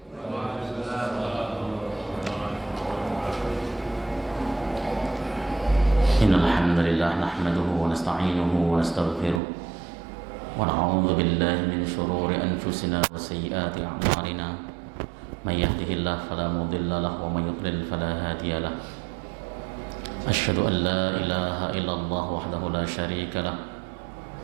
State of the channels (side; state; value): left; drops out; at 9.4 s